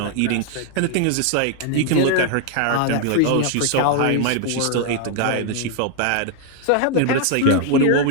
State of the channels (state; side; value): different; both; correlation 0.00